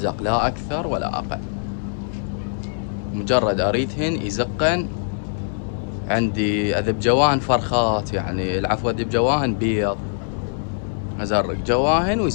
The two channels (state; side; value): silent; right; digital silence